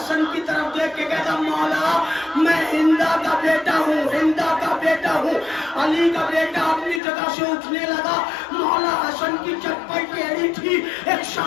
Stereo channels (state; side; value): drops out; right; at 7.0 s